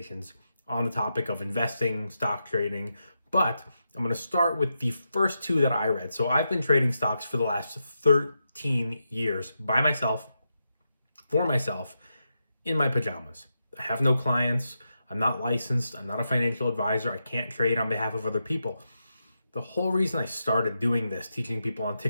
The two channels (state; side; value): inverted; both; correlation -0.86